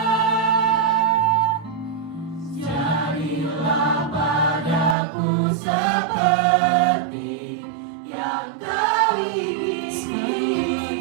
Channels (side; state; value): left; drops out; at 5.0 s